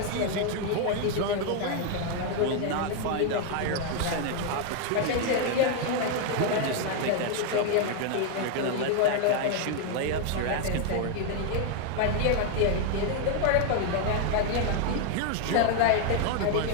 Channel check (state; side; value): different; both; correlation 0.00